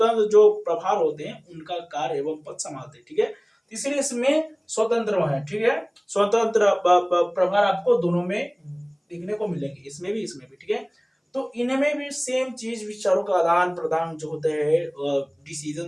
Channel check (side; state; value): both; identical; correlation 1.00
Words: जो प्रभार होते हैं उनका कार्य एवं पद संभालते हैं, ठीक है। इसलिए इसमें स्वतंत्र है, ठीक है, स्वतंत्र प्रभार आपको दोनों में देखने को मिलेंगे, इसमें भी, इसमें भी, ठीक है। तो इनमें भी सेम चीज, विचारों का आदान प्रदान जो होते हैं,